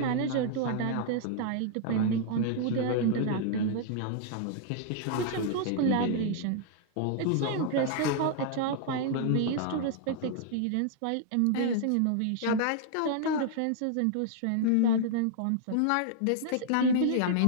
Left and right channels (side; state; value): both; different; correlation -0.01